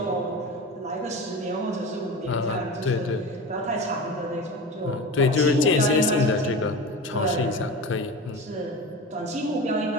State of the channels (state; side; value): normal; both; correlation 0.29